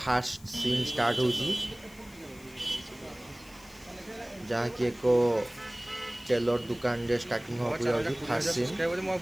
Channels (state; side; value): noise; left; hiss, 23 dB below the sound